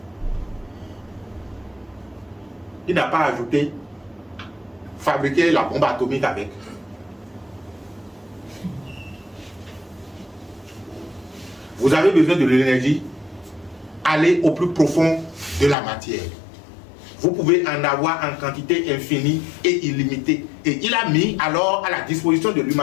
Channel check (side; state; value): right; drops out; at 15.8 s